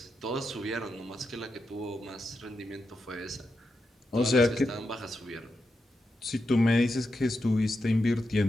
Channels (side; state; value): both; normal; correlation 0.87